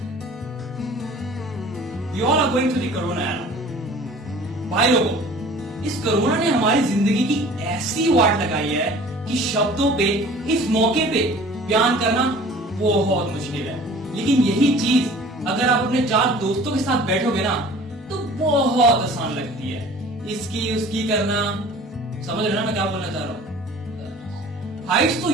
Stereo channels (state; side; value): normal; both; correlation 0.46